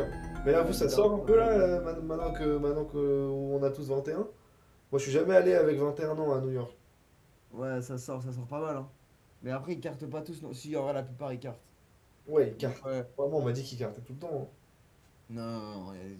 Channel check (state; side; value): identical; both; correlation 1.00